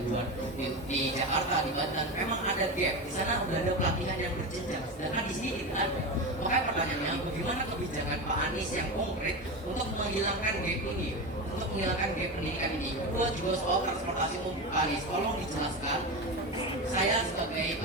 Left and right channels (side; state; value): both; normal; correlation 0.21